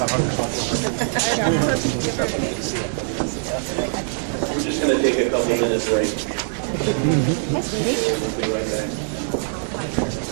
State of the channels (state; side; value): silent; left; digital silence